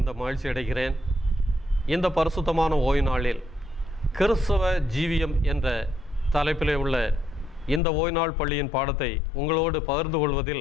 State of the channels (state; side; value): drops out; right; at 7.8 s